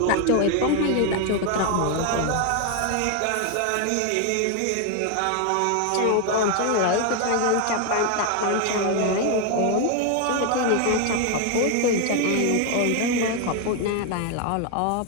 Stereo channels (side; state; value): both; different; correlation 0.01